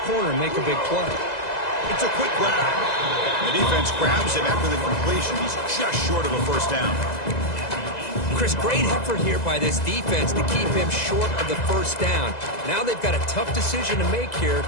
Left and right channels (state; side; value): late; right; 2.0 ms